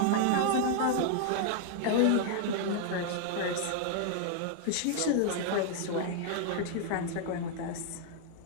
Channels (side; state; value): both; different; correlation 0.00